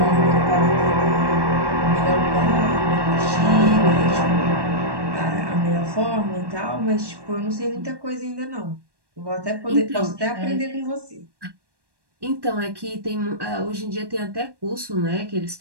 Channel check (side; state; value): left; late; 1.1 ms